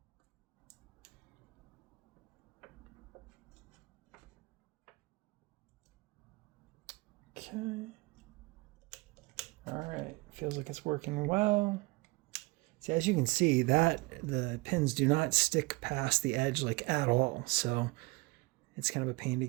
Okay. All right, feels like it's working well. See, as you can see, that the pins do not stick past the edge like at all. So it's kind of a pain to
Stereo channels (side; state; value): left; quieter; 25.1 dB